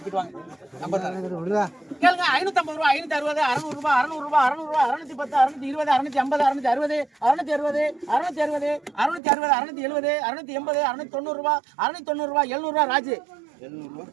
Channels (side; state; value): left; drops out; at 9.2 s